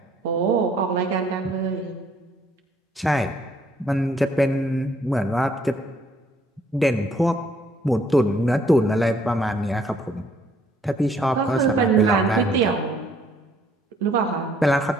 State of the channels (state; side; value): normal; both; correlation 0.65